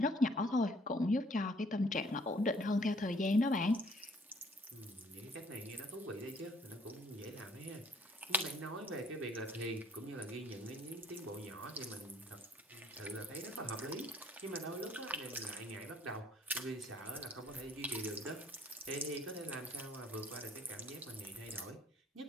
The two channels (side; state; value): both; normal; correlation 0.60